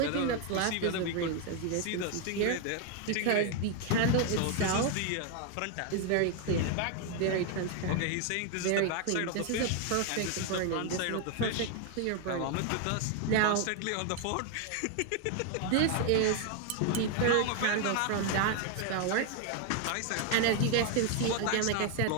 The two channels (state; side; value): different; both; correlation 0.01